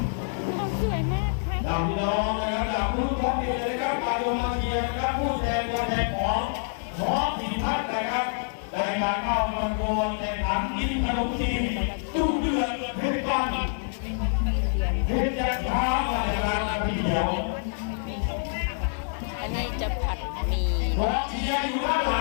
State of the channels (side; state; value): right; silent; 59 dB below the other